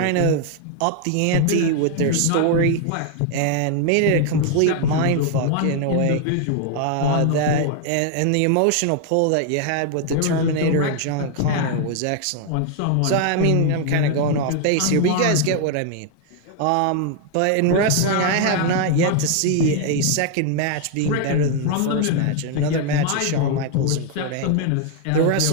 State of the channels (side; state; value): both; different; correlation 0.00